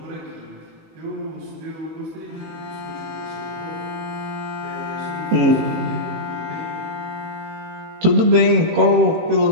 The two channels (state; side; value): late; left; 18 ms